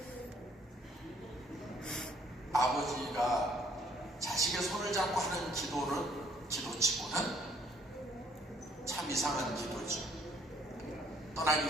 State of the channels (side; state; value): both; normal; correlation 0.64